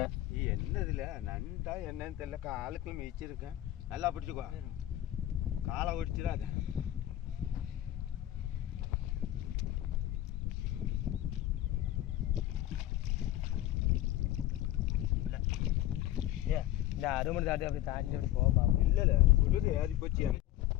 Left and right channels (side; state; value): right; quieter; 14.1 dB